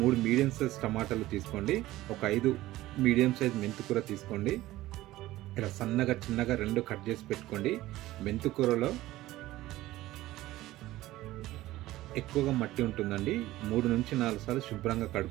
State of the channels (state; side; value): quieter; left; 16.5 dB